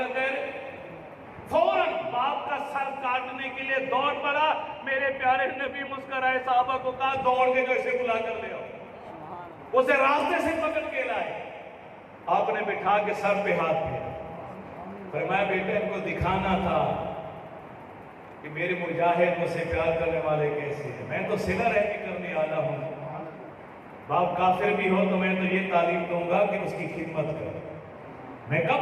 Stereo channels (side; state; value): both; identical; correlation 1.00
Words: کہہ رہے، فوراً باپ کا سر کاٹنے کے لیے دوڑ پڑا۔ میرے پیارے نبی مسکرائے، صحابہ کو کہا دوڑ کے جو اسے بلا کر لے آؤ، اسے راستے سے پکڑ کے لائے، آپ نے بٹھا کے سر پہ ہاتھ دیا، فرمایا بیٹا ان کو دکھانا تھا کہ میرے مجاہد مجھ سے پیار کرنے والے کیسے ہیں، میں تو صلہ رحمی کرنے والا ہوں، باپ کافر بھی ہو تو میں تو یہ تعلیم دوں گا کہ اس کی خدمت کرو، میں